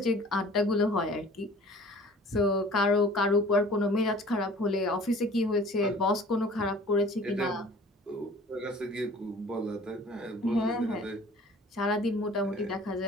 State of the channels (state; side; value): normal; both; correlation 0.48